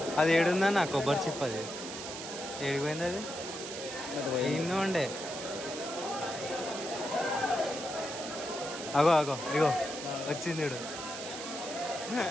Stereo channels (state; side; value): noise; right; hiss, 8 dB below the sound